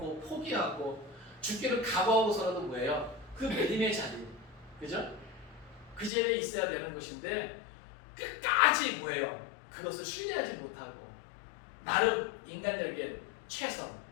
포기하고 죽기를 각오하고서라도 뭐예요? 그 믿음의 자리, 그죠? 그 자리에 있어야 되는 것인데 끝까지 뭐예요? 그것을 신뢰하지 못하고 나름 인간적인 최선,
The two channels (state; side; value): drops out; right; at 6.1 s